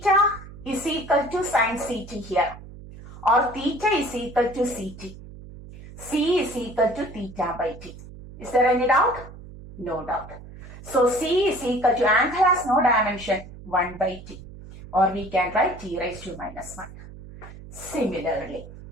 is equal to sin CT here, or theta is equal to CT. C is equal to theta by T. Is there any doubt? No doubt. So, C is equal to, angle has no dimension, 1 by T. Or we can write T raised to minus 1. Similarly,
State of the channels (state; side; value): noise; right; hum, 16 dB below the sound